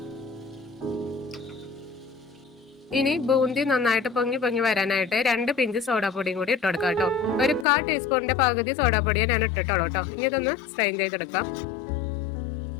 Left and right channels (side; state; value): right; drops out; at 7.7 s